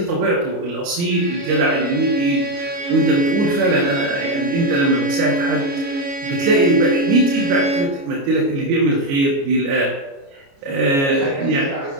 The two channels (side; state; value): left; late; 29 ms